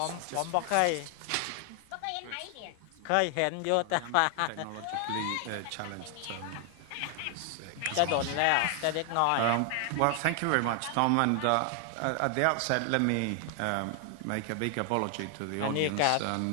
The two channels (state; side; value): different; both; correlation 0.00